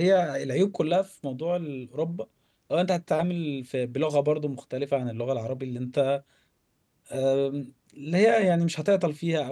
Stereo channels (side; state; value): both; identical; correlation 1.00